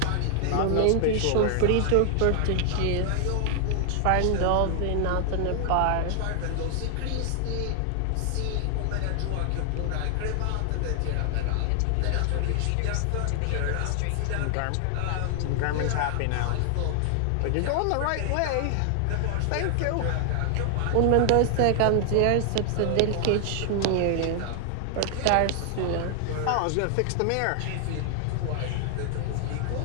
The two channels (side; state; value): both; different; correlation 0.00